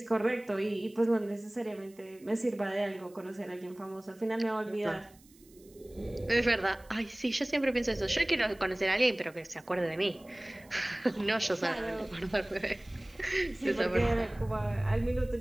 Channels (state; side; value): noise; right; hiss, 27 dB below the sound